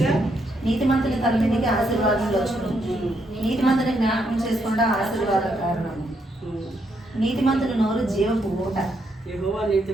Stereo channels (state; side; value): normal; both; correlation 0.77